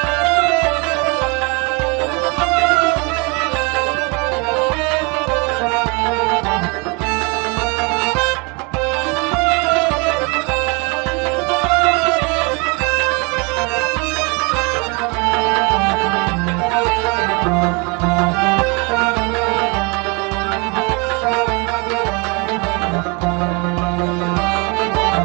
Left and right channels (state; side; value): quieter; left; 30.3 dB